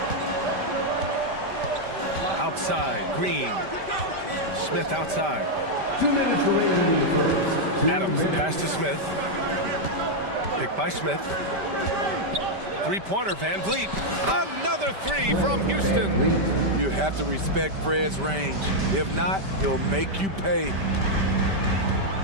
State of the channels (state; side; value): late; left; 5.1 ms